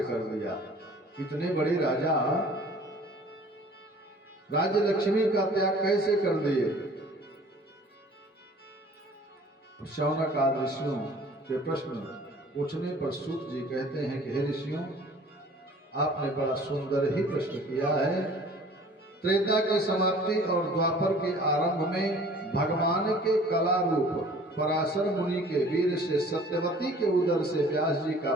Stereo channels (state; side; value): normal; both; correlation 0.50